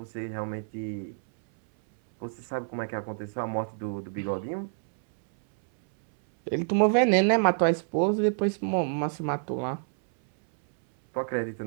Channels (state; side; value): silent; left; 60 dB below the other